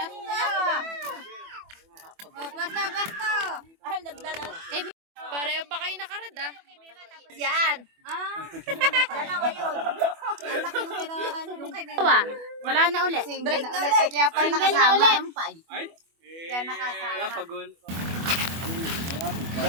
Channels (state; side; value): late; left; 24 ms